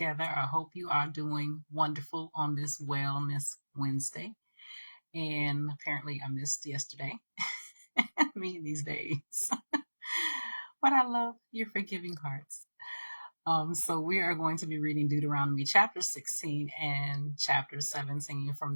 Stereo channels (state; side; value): inverted; both; correlation -1.00